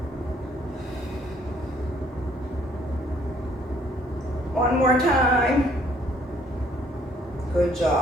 One more time. Good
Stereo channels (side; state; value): both; normal; correlation 0.63